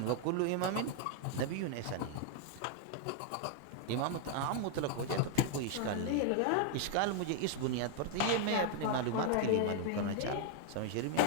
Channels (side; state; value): both; different; correlation 0.00